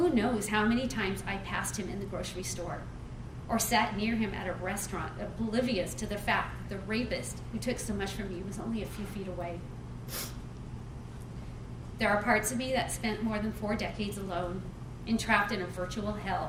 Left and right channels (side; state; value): both; identical; correlation 1.00